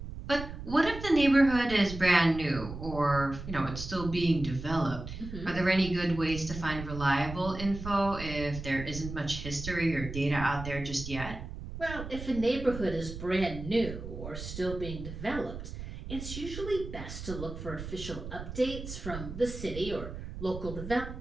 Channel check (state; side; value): noise; right; rumble, 9 dB below the sound